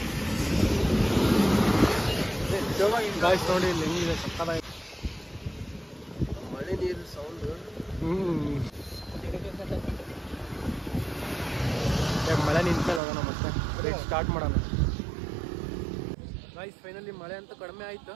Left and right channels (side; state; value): left; drops out; at 13.0 s